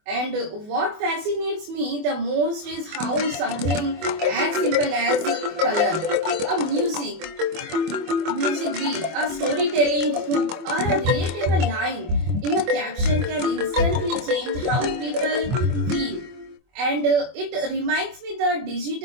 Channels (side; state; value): left; late; 24 ms